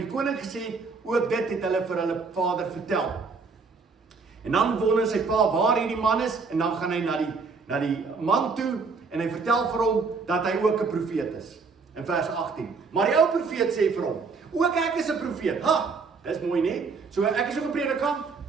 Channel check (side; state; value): left; quieter; 4.7 dB